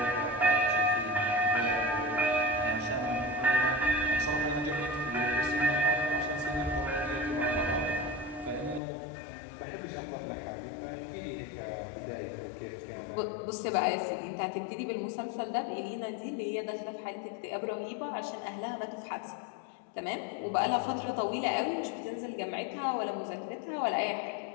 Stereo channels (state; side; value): drops out; right; at 8.8 s